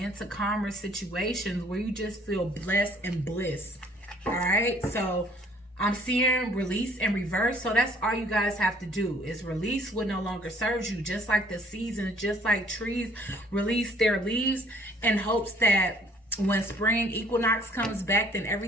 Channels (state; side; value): normal; both; correlation 0.58